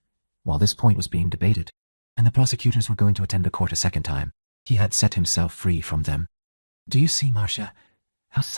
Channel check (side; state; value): both; inverted; correlation -1.00